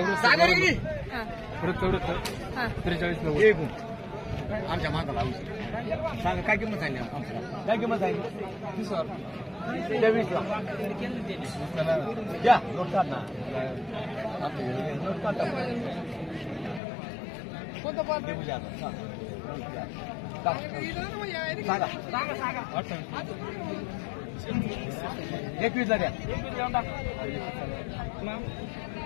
हा. 43 आमच्या माताला सांगा काय किंमत सांगली? काय किंमत सांगली? 23 ला घ्या. नोट काढ ना. नोट काढ. कोणतं पण सांगा. 21 ला द्या.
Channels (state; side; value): drops out; right; at 16.8 s